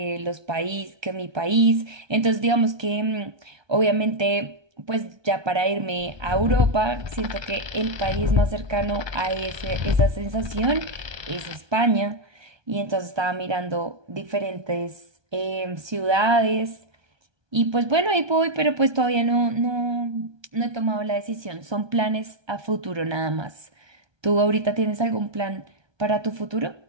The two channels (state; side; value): late; left; 1.2 ms